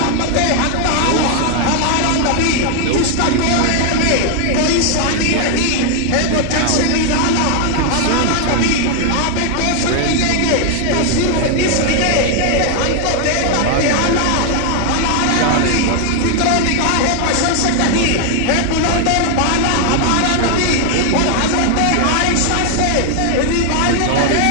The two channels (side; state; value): both; different; correlation 0.00